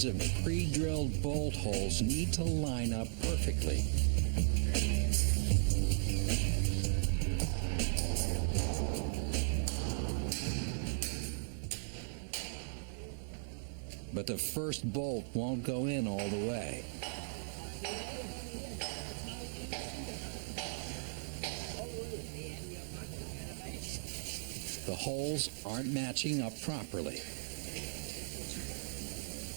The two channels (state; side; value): silent; left; digital silence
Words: of pre-drilled bolt holes need to line up perfectly. But the first bolt won't go in all the way. The holes aren't matching up properly.